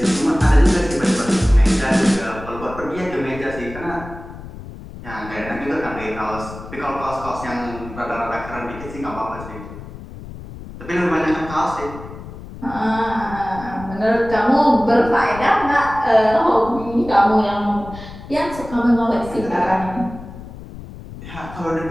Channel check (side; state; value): left; noise; rumble, 13 dB below the sound